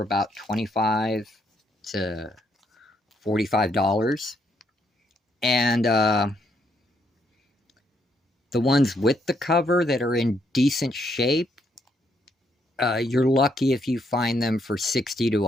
about $25 to $45. And the ones with the cover that are in decent shape, you're lucky if you find them for $60 to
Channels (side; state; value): both; normal; correlation 0.74